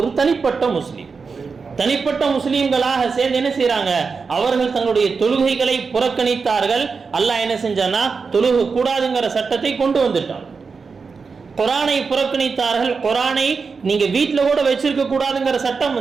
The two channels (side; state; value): left; quieter; 5.0 dB